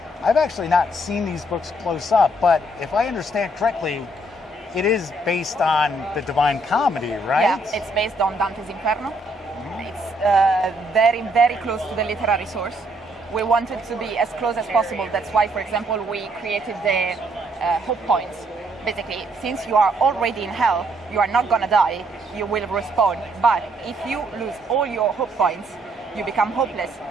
I've actually not seen these books close up. But if I understand correctly, it is based on the Divine Comedy, right? Yeah, it's based on Dante's Inferno. It's very close to the literary source. We wanted to be as close as possible. That's why, for example, we created the hope points. Basically, since you are already in hell, you are not gonna die, you will respawn. But if you lose all your hope points, you become hopeless.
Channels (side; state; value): both; normal; correlation 0.70